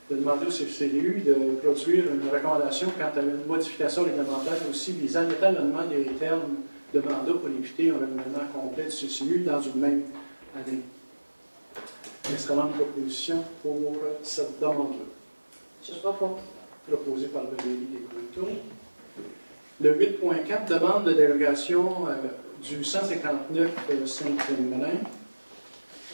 De demander au CCU de produire une recommandation quant à une modification réglementaire aussi visant l'étalonnement des termes de mandat pour éviter un renouvellement complet du CCU dans une même année. Excellente proposition pour cette demande-là. Je propose. Proposée par le délit des Coultons. Le 8.4, demande de dérogation du 159 Saint-Féminin.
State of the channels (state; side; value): inverted; both; correlation -1.00